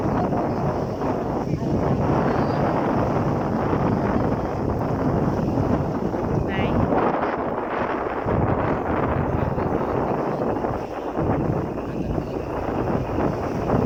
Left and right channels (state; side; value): identical; both; correlation 1.00